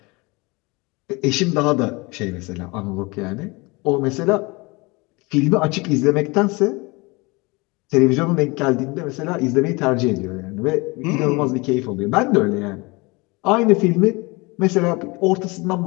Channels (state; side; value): quieter; right; 25.7 dB